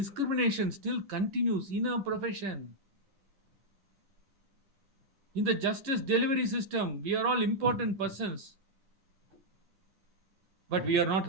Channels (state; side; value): late; left; 11 ms